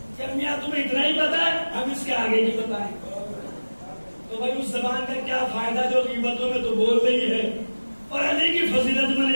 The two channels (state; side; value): inverted; both; correlation -1.00